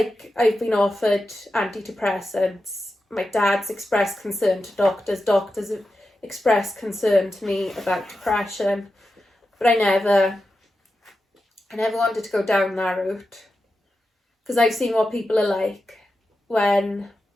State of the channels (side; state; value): both; normal; correlation 0.90